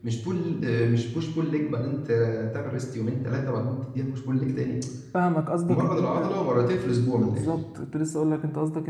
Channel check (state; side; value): identical; both; correlation 1.00